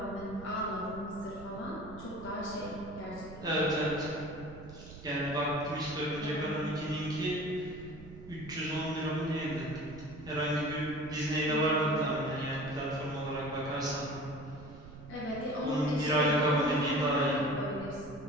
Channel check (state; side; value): noise; right; rumble, 15 dB below the sound